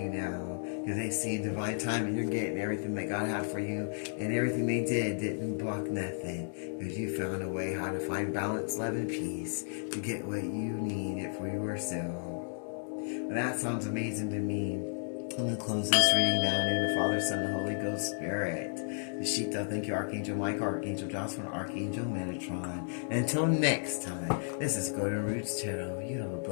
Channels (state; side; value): silent; right; digital silence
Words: now. Because they see in divine time and you're getting everything that God had for you. And everything they did didn't block nothing. Because you found a way how to find balance, love, and peace to get what you needed for yourself. Well, that sounds amazing to me. I'm going to close this reading now in the name of the Father, Son, and Holy Ghost Spirit. The Shita, thank you, Archangel Michael, Archangel Jocelyn, Archangel Metatron. And until next time, this is Golden Roots Tarot. You have a